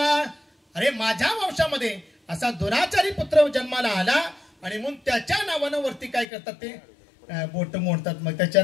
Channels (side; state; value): right; drops out; at 6.2 s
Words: अरे माझ्या वंशामध्ये असा दुराचारी पुत्र जन्माला आला आणि म्हणून त्याच्या नावानं वरती काय करतात? ते बोट मोडतात, मग त्याच्या